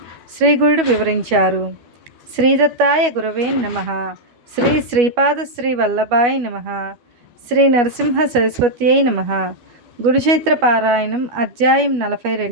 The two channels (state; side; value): late; left; 12 ms